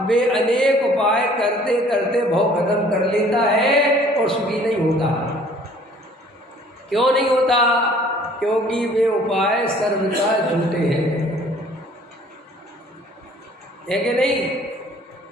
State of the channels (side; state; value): both; normal; correlation 0.55